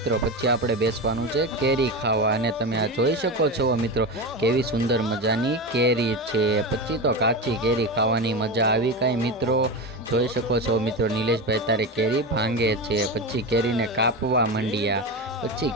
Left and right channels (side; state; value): both; normal; correlation 0.20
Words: પછી આપણે બેસવાનું છે કેરી ખાવા અને તમે આ જોઈ શકો છો મિત્રો કેવી સુંદર મજાની કેરી છે. પછી તો કાચી કેરી ખાવાની મજા આવી કાંઈ મિત્રો જોઈ શકો છો મિત્રો. નિલેશભાઈ તારે કેરી ભાંગે છે. પછી કેરીને કાપવા માંડ્યા. પછી